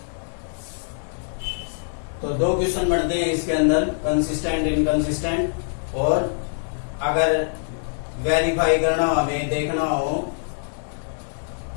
तो 2 क्वेश्चन बनते हैं इसके अंदर, कंसिस्टेंट इनकंसिस्टेंट, और अगर वेरीफाई करना हो, हमें देखना हो,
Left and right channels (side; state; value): right; silent; digital silence